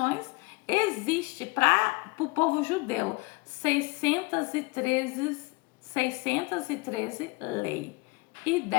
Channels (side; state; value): right; quieter; 25.9 dB